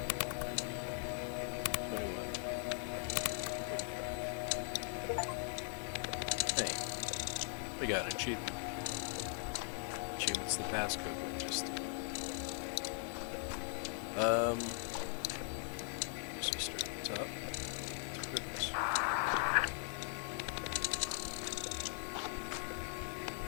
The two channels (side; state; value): right; silent; 51 dB below the other